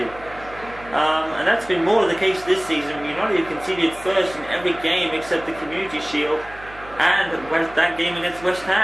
And that's been more the case this season. United conceded first in every game except the Community Shield and that game against West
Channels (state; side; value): noise; right; hum, 19 dB below the sound